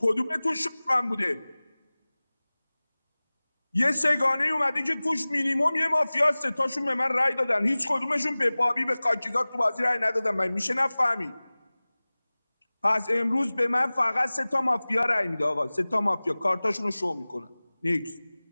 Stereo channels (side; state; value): both; inverted; correlation -0.99